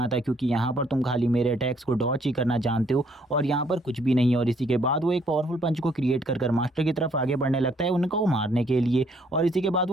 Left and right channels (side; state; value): both; normal; correlation 0.66